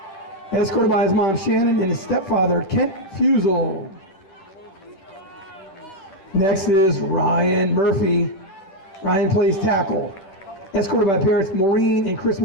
escorted by his mom Shannon and his stepfather Kent Fusel. Next is Ryan Murphy. Ryan plays tackle, escorted by parents Maureen and Chris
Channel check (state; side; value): late; right; 10 ms